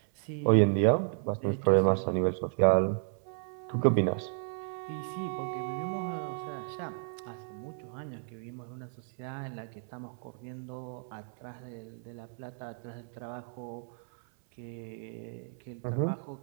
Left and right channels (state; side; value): silent; left; 56 dB below the other